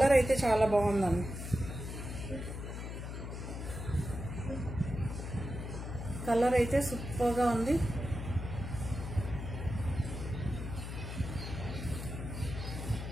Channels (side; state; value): left; noise; hum, 7 dB below the sound